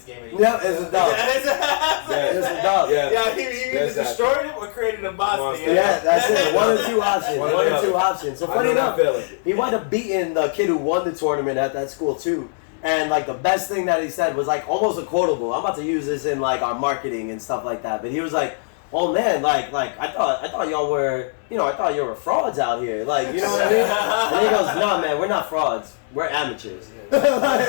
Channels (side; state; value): right; silent; 65 dB below the other